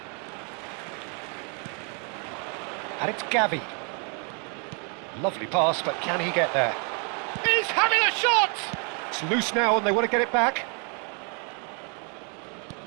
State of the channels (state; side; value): quieter; left; 37.5 dB